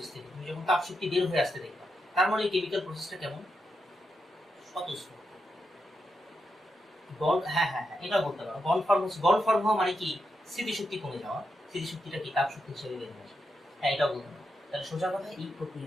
থেকে তুমি যখন তাপ শক্তি বের হয়ে আসতে দেখবা, তার মানে এই কেমিক্যাল প্রসেসটা কেমন? স্বতঃস্ফূর্ত। হ্যাঁ হ্যাঁ হ্যাঁ, এটা বলতে পারো। বন্ড ফর্ম হওয়া মানে কি? স্মৃতিশক্তি কমে যাওয়া। স্মৃতিশক্তিটা কি তাপ শক্তি হিসেবে বের হয়ে আসে। হ্যাঁ, এটাও বলতে পারো। তাহলে সোজা কথা, এই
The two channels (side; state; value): both; normal; correlation 0.85